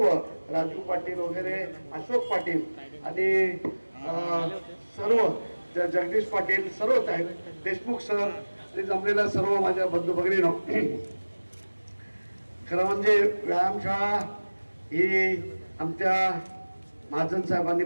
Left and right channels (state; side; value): inverted; both; correlation -1.00